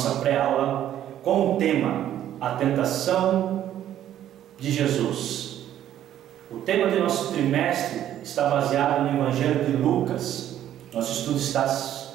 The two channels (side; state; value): left; quieter; 11.5 dB